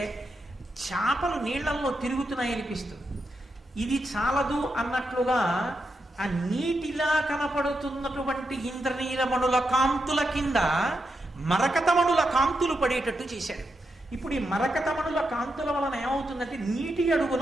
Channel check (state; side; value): normal; both; correlation 0.85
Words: చాపలు నీళ్లలో తిరుగుతున్నాయనిపిస్తుంది. ఇది చాలదు అన్నట్లుగా ఆ నీటిలా కనపడుతున్నటువంటి ఇంద్రనీలమణుల కాంతుల కింద మరకతమణుల కాంతులు పడేటట్టు చేశాడు. ఇప్పుడు ఈ మరకతమణుల కాంతుల వలన ఏమవుతుందంటే నీటి